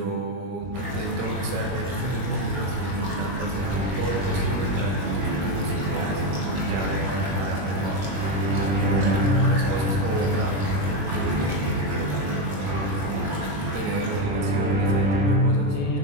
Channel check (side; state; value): left; late; 21 ms